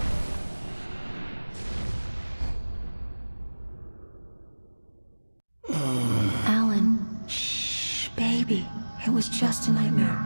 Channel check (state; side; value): inverted; both; correlation -1.00